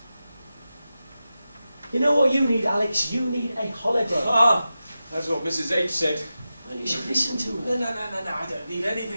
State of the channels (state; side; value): inverted; both; correlation -0.92